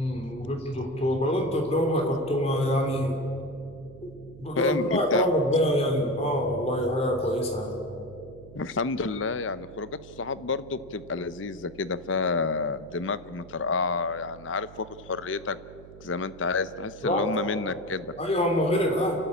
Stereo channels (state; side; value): noise; right; hum, 18 dB below the sound